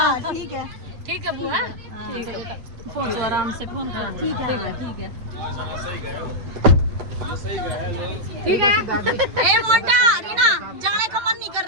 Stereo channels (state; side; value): late; left; 8.6 ms